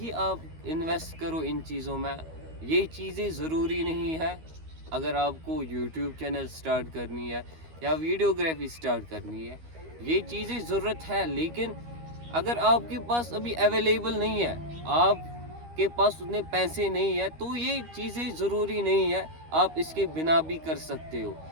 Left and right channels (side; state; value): left; late; 13 ms